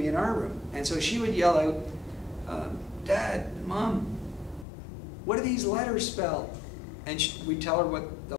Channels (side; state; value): right; drops out; at 4.7 s